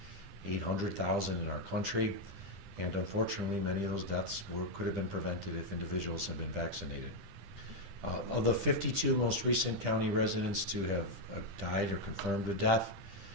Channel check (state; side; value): late; left; 10 ms